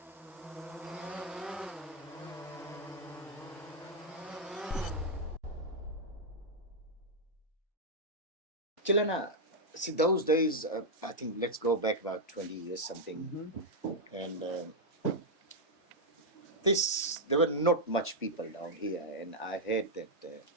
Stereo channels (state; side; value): normal; both; correlation -0.02